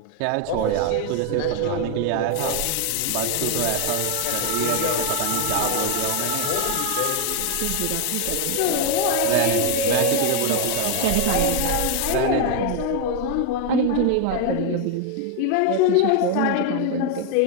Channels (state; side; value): different; both; correlation 0.01